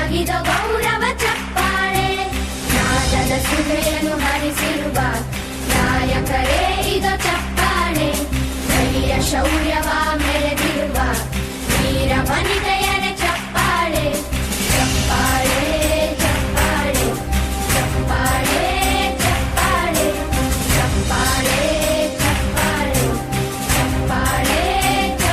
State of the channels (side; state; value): both; identical; correlation 1.00